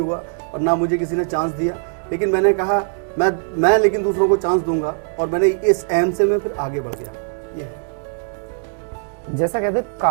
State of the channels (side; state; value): left; silent; 65 dB below the other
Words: और ना मुझे किसी ने चांस दिया। लेकिन मैंने कहा मैं लेकिन दूसरों को चांस दूंगा, और मैंने इस एम से मैं फिर आगे बढ़ गया। ये है। जैसा कहते हैं,